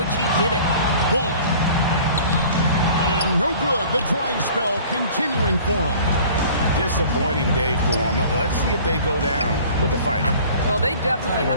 he did it. Ball. And no good. The dry spell continuing for him. Disappointing day for them. Let's see if they go down with a fight. Well, they definitely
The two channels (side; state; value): both; inverted; correlation -0.47